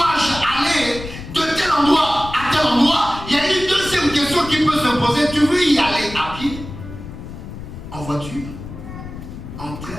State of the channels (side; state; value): left; noise; rumble, 12 dB below the sound